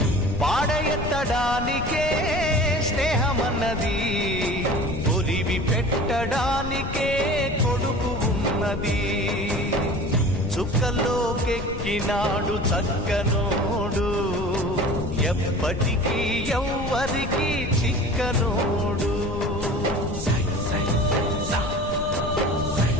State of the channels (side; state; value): left; noise; rumble, 7 dB below the sound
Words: పాడెత్తడానికే స్నేహమన్నది, ఒరివి పెట్టడానికే కొడుకు ఉన్నది. చుక్కలోకెక్కినాడు చక్కనోడు, ఎప్పటికీ ఎవ్వరికి చిక్కనోడు.